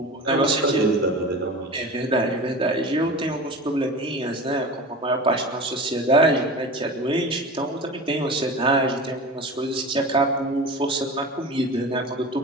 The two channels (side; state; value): both; normal; correlation 0.33